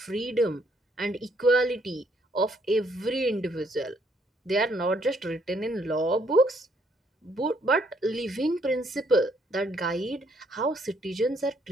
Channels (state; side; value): normal; both; correlation 0.69